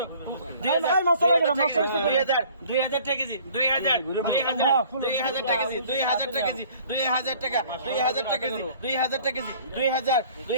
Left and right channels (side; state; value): both; inverted; correlation -0.53